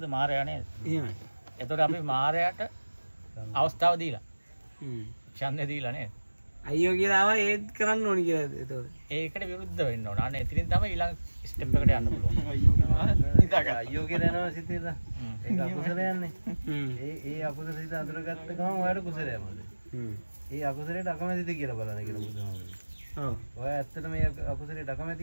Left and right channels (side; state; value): both; inverted; correlation -1.00